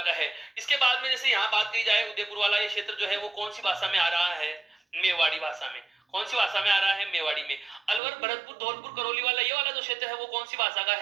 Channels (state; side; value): drops out; left; at 8.0 s